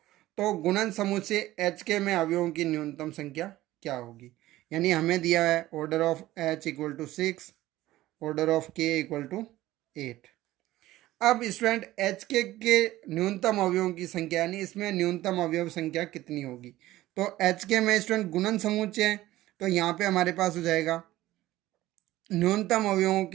तो गुणन समूह से एच के में अवयवों की न्यूनतम संख्या क्या होगी। यानी हमें दिया है order of h equal to 6 order of k equal to 8। अब स्टूडेंट एच के न्यूनतम अवयवों की संख्या यानी इसमें न्यूनतम अवयव संख्या कितनी होगी। तो एच के में स्टूडेंट गुणन समुच्चय है तो यहाँ पे हमारे पास हो जाएगा न्यूनतम अवयवों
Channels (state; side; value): quieter; left; 16.0 dB